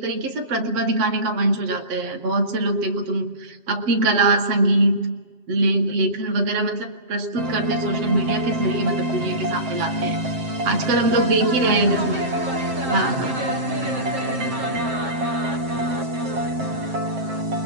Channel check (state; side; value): late; left; 7.5 ms